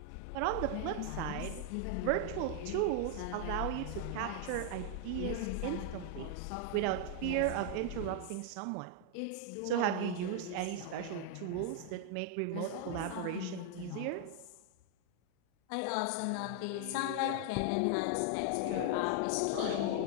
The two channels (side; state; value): both; different; correlation 0.00